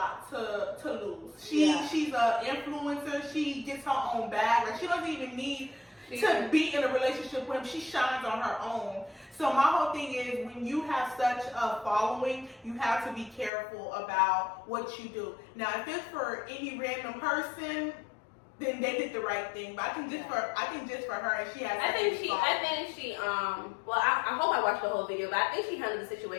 to lose. She's an influencer. She gets her own bag. Like, she doesn't even need to be in a relationship with him. She shines on her own. So my whole thing is, when you have such a following, you have to be careful about what you do. Now, if it's for any random person, then they did the right thing. But I think just for her, and she has. I think she. Well, I hope I watched the whole video, but I think she handled the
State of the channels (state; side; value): drops out; right; at 13.5 s